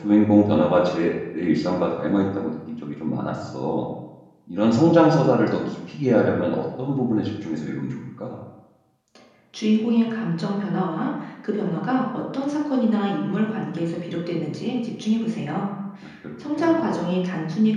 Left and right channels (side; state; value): both; identical; correlation 1.00